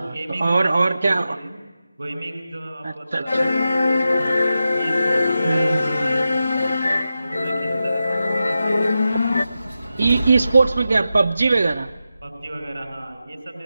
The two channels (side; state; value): both; inverted; correlation -0.91